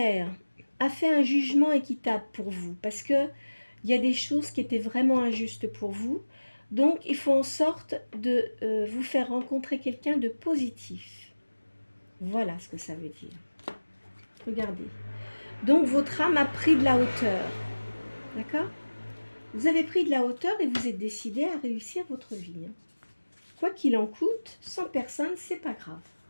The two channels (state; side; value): inverted; both; correlation -1.00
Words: a fait un jugement équitable pour vous parce que il y a des choses qui étaient vraiment injustes pour vous. Donc, il faut en sorte de vous faire rencontrer quelqu'un de positif. Voilà ce que ça veut dire. Regardez. Donc, votre âme a pris de la hauteur. D'accord? Vous avez pris de la hauteur et vous êtes décidé à réussir votre vie. Quoi qu'il en coûte, sans personne, c'est pas grave.